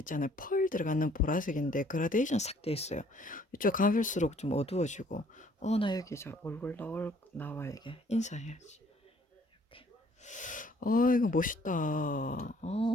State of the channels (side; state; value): both; normal; correlation 0.60